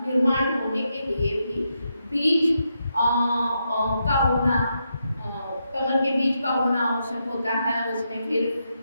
निर्माण होने के लिए भी बीज का होना, कमल के बीज का होना आवश्यक होता है। उसमें फिर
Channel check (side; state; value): both; inverted; correlation -0.83